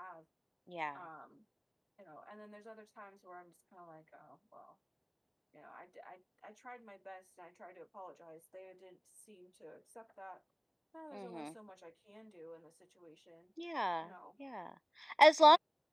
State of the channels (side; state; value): both; identical; correlation 1.00